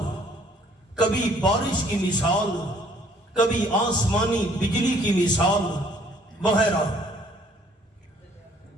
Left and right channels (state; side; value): normal; both; correlation 0.60